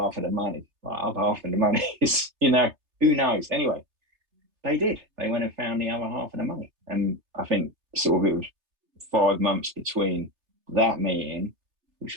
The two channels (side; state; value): left; late; 3.3 ms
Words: of the money. Like, other half of the money is, who knows? Anyway, they did. They went and found the other half of the money. And I think sort of it was 5 months between that meeting,